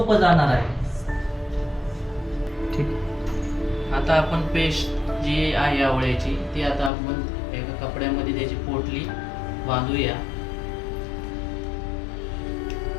जाणार आहे. ठीक. आता आपण पेस्ट जी आहे आवळ्याची ती आता आपण एका कपड्यामध्ये त्याची पोटली बांधूया.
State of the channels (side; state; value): right; drops out; at 6.9 s